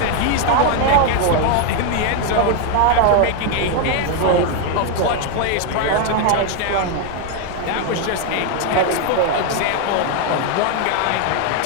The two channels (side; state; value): both; different; correlation 0.01